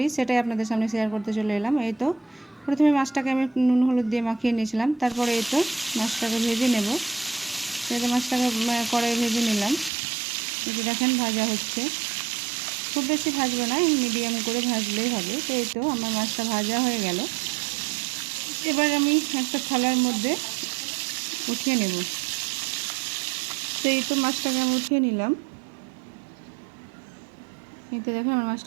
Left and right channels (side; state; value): left; drops out; at 9.9 s